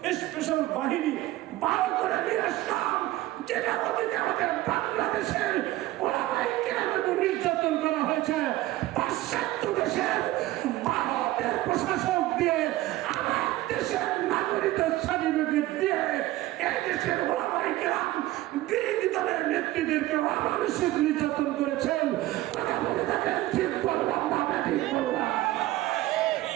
স্পেশাল বাহিনী 12 করে নিয়ে আসলাম, যেটা আমাদের বাংলাদেশের ওলামায়ে কেরামের নির্যাতন করা হয়েছে। পাশ্চাত্য দেশের ভারতের প্রশাসক দিয়ে দেশের নাগরিক সার্টিফিকেট দিয়ে এই দেশের ওলামায়ে কেরাম বিরোধী দলের নেতৃত্বদেরকে অমানসিক নির্যাতন করেছেন। কথা বলে থাকেন ঠিক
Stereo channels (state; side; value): quieter; left; 16.6 dB